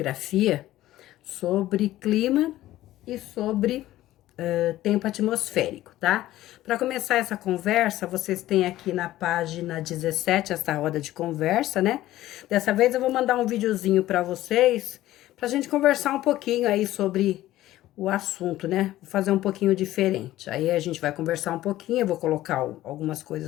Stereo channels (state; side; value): quieter; right; 15.0 dB